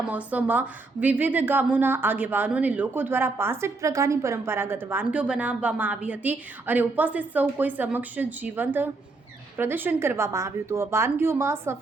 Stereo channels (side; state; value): left; quieter; 3.5 dB